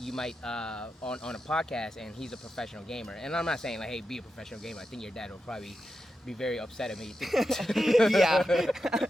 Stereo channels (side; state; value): both; normal; correlation 0.89